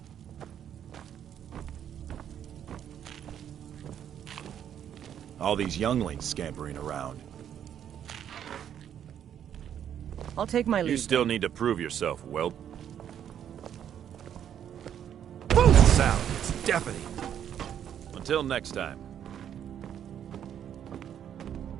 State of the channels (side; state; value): left; quieter; 9.5 dB